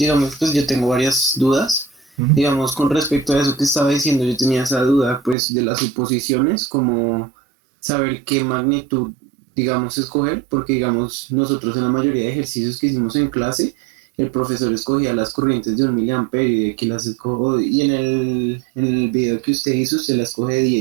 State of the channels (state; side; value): drops out; left; at 5.4 s